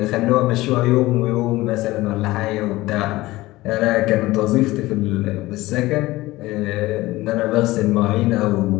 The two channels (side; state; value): right; quieter; 18.6 dB